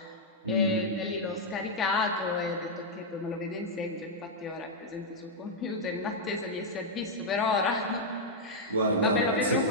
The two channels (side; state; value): both; normal; correlation -0.04